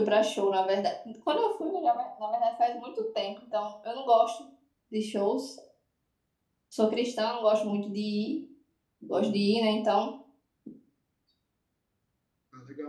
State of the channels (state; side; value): identical; both; correlation 1.00